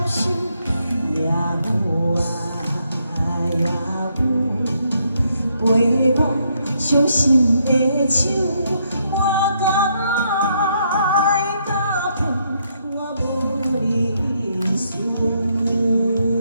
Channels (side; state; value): both; inverted; correlation -0.75